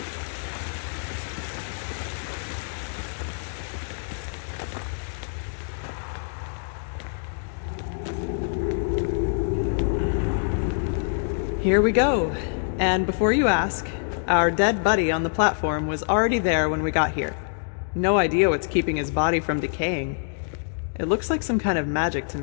Here we go. And before you ask, our dead buddy on the platform was already there when we got here. No idea what's keeping his body from decaying. It looks like some kind of magic to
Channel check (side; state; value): right; silent; digital silence